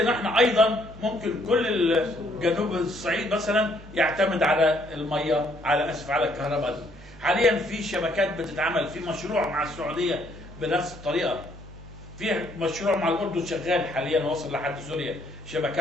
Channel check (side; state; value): left; noise; hum, 20 dB below the sound